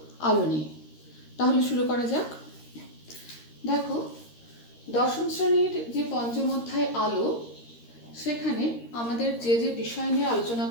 আলো নিয়ে। তাহলে শুরু করা যাক। দেখো, দশম শ্রেণীর যে পঞ্চম অধ্যায় আলো, সেখানে আমাদের যে যে বিষয় নিয়ে আলোচনা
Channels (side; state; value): right; late; 13 ms